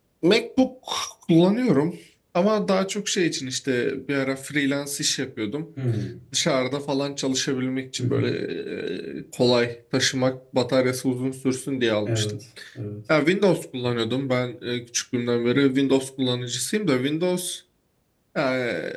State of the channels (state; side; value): identical; both; correlation 1.00